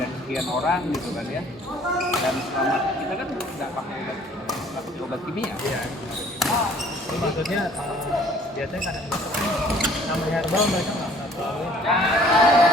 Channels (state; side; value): normal; both; correlation 0.55